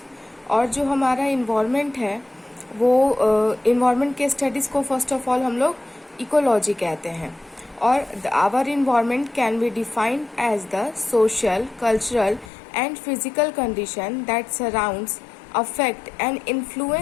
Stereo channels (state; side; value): drops out; right; at 12.5 s